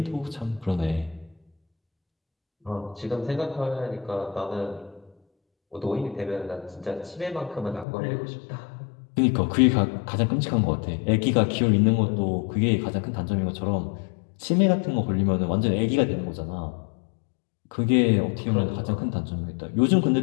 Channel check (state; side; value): drops out; right; at 7.9 s